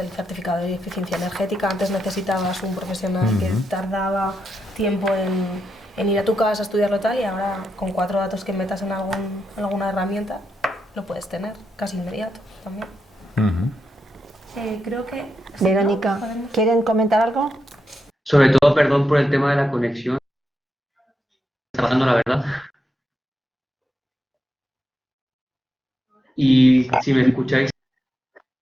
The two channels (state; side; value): normal; both; correlation 0.84